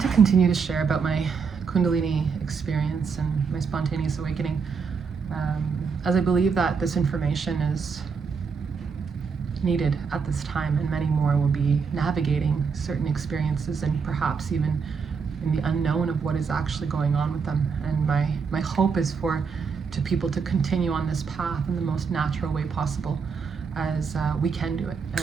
to continue to share about my Kundalini experience and my spontaneous awakening, as I believe that this information is needed at this time, and many more will be navigating certain experiences and perhaps even in the unknown of what is actually going on with them. And my hope is for people to continue on this path in the most natural way possible, as we can do it.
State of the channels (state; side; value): quieter; left; 5.7 dB